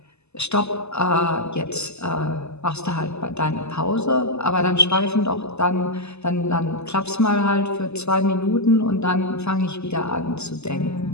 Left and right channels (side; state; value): right; late; 0.80 ms